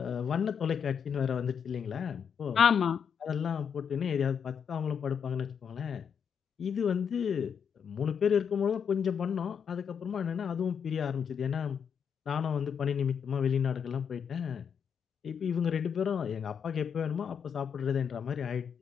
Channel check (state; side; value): quieter; right; 7.2 dB